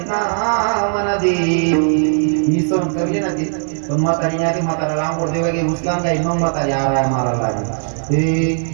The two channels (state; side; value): silent; left; 61 dB below the other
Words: ना म्हणा दे मी सहन करली ना ती पण म्हातारी नाही म्हातारा लांबवर देवा गे उचलान काही मग म्हातारी आराया मारायला